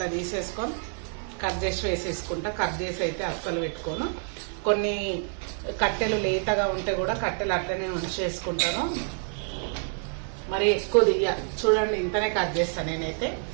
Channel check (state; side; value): silent; left; 56 dB below the other